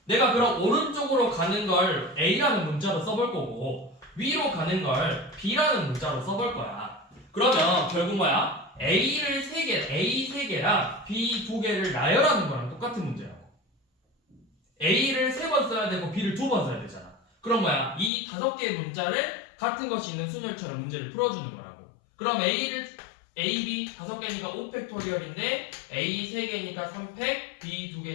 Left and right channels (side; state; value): right; drops out; at 18.1 s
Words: 내가 그럼 오른쪽으로 가는 걸 A라는 문자로 써볼 거고 위로 가는 걸 B라는 문자로 써볼 거야. 그러면 결국 뭐야? A를 3개, A 3개랑 B 2개를 나열하는 거랑 똑같은 문제라고. A를 3번 써야 되고 B를 2번 써야 되잖아. 그럼 뭐야? 이 5개의 문자를 같은 것이 있는 순열처럼 문제를 풀어주는 거라고. 그럼 A, B 5개니까 5팩토리얼인데 A 3개니까 3팩, B